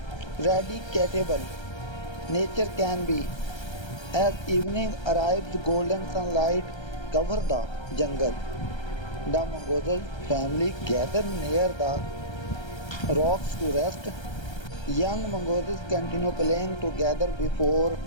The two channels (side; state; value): right; late; 1.3 ms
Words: nature can be. As evening arrives, golden sunlight covers the jungle. The Mongoose family gather near the rocks to rest. Young mongooses continue playing together before